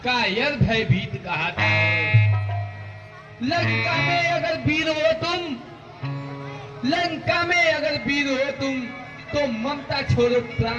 कायर भयभीत कहता है। लंका में अगर वीर हो तुम, लंका में अगर वीर हो तुम, तो ममता छोड़ो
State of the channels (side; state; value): both; identical; correlation 1.00